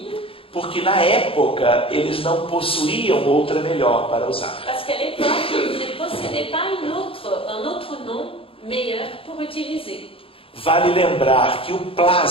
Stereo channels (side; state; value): right; late; 0.27 ms